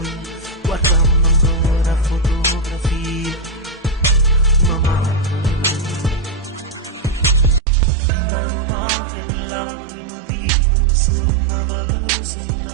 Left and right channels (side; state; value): left; drops out; at 7.6 s